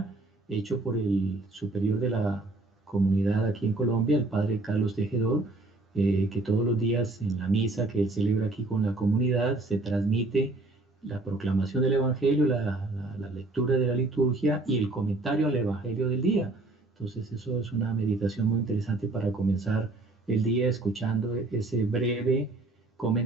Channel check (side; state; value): left; quieter; 3.0 dB